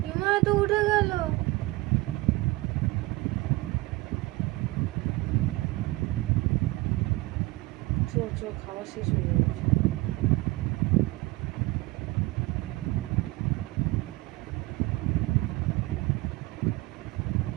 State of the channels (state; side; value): quieter; left; 20.8 dB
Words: বিমা তো উঠে গেল। খাওয়া শেষ হয়ে যাচ্ছে।